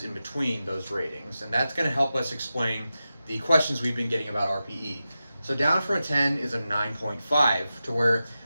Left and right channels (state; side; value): inverted; both; correlation -0.92